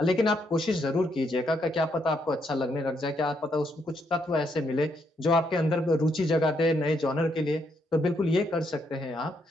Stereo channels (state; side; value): normal; both; correlation 0.76